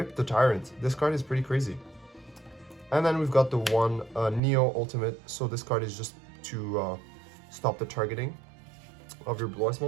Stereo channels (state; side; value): drops out; left; at 4.4 s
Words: the Tyrant. This card is pretty crazy. And then we've got the one Neo Ultimate. So this card is just to stop the targeting of your Blue Eyes